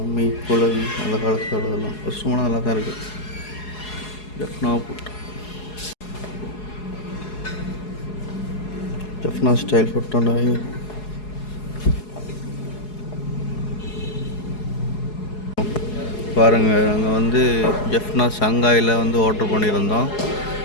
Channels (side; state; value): right; late; 4.8 ms